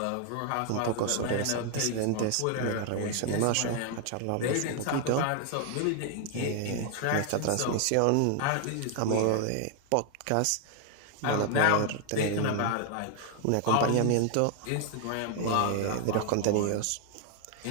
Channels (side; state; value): both; different; correlation 0.00